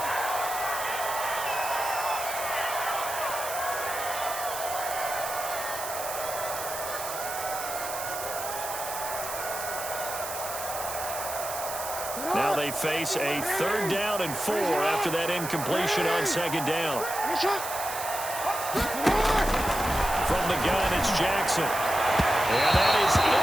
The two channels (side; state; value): right; noise; hiss, 7 dB below the sound